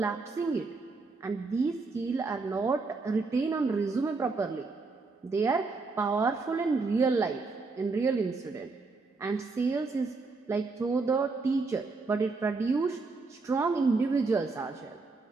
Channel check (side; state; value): left; quieter; 4.0 dB